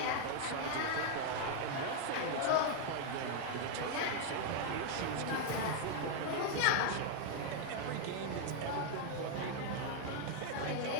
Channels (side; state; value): both; different; correlation 0.00